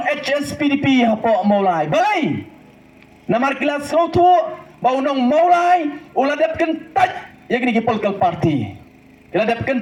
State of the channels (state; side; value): identical; both; correlation 1.00